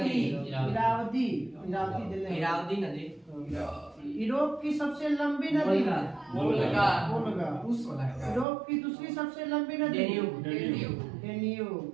नदी यूरोप की सबसे लंबी नदी वोल्गा वोल्गा। रूस वाला है। यूरोप की दूसरी सबसे लंबी नदी डेन्यूब।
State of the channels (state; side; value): drops out; left; at 8.5 s